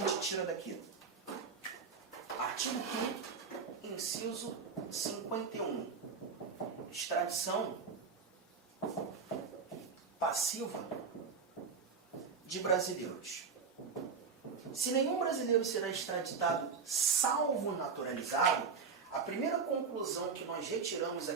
tira daqui? Artigo 5º, inciso 51. Extradição passiva de brasileiros. Se nenhum brasileiro será extraditado, salvo naturalizado, a primeira conclusão que nós retiramos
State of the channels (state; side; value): quieter; left; 5.5 dB